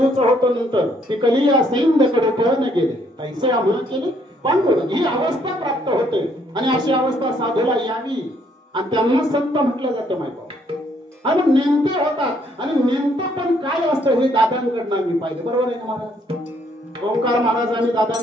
होतं. नंतर ती कलिया सैन्यकडे पळून गेले, तैसे आम्हा केले पांडुर. ही अवस्था प्राप्त होते आणि अशी अवस्था साधूला यावी आणि त्यांना संत म्हटलं जातं माहिती. आणि नेमते होतात आणि नेमतं पण काय असतं हे दादांकडनं आम्ही पाहिजे. बरोबर आहे ना महाराज? ओंकार महाराज आणि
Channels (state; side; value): normal; both; correlation 0.68